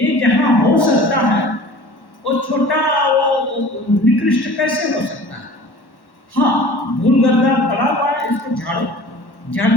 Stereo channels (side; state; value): right; late; 1.1 ms